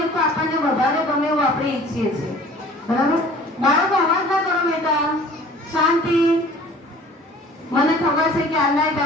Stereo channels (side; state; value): both; normal; correlation 0.48